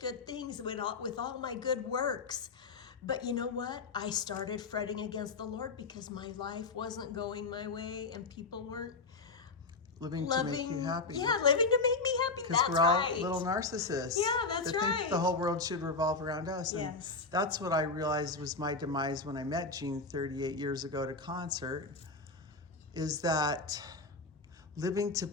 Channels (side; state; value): right; quieter; 3.9 dB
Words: things with all my good works. But you know what? I started fretting against the Lord because my life wasn't going my way and people weren't living to make you happy. Yeah, living to make me happy. Because we're all little narcissists. Yeah, that's that right. think the whole world should revolve around us. And yes. That's what I realized was my demise when I met Jean 38 years ago at a concert, is that living to